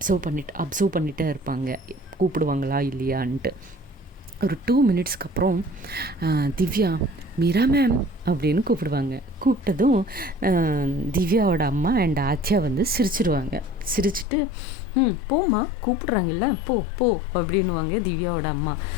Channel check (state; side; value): drops out; right; at 14.2 s